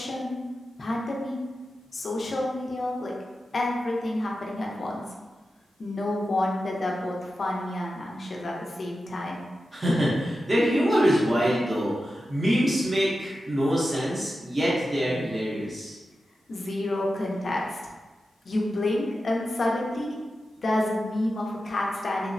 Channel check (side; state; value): both; normal; correlation 0.92